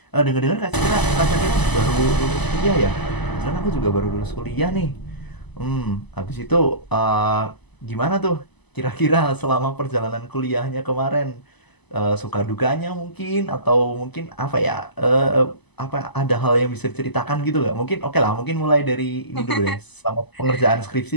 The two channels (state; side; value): late; right; 1.0 ms